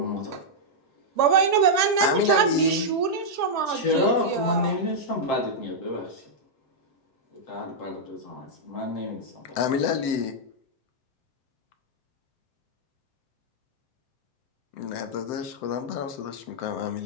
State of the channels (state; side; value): late; right; 7.7 ms